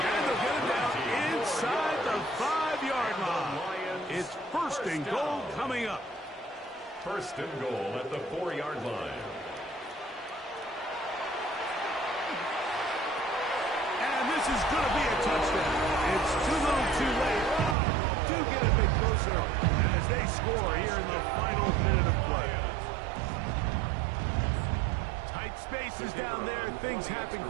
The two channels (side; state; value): left; drops out; at 17.8 s